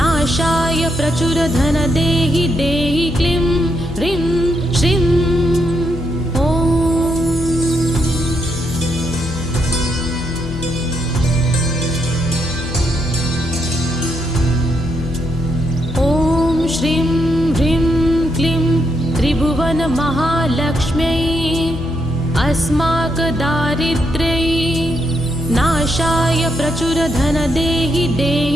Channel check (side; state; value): left; noise; hum, 9 dB below the sound